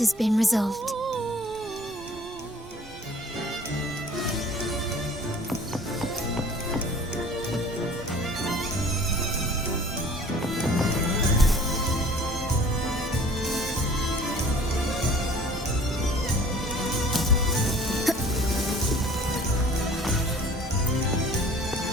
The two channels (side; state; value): both; normal; correlation 0.50